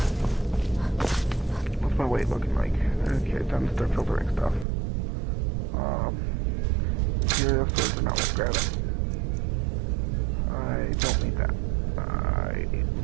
What's my weight looking like? Okay, time to start filtering stuff. Material swords are not worth grabbing. I don't need that. I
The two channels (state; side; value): drops out; left; at 4.7 s